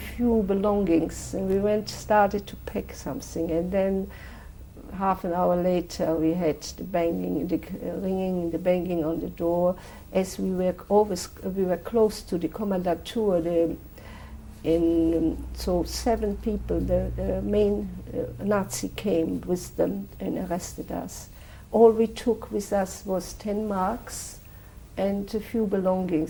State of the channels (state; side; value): identical; both; correlation 1.00